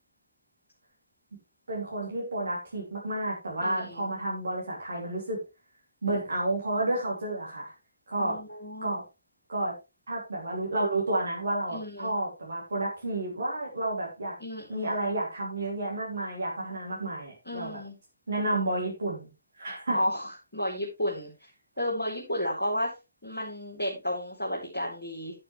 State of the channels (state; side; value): inverted; both; correlation -0.75